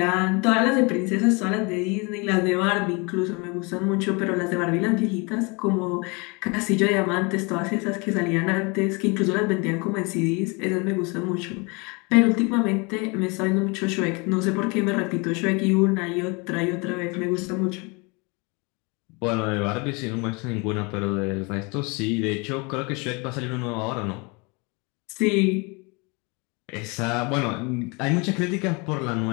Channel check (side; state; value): right; quieter; 29.4 dB